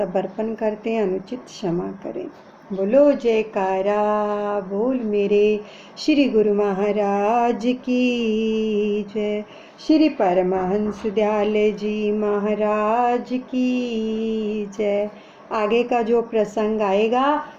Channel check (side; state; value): both; identical; correlation 1.00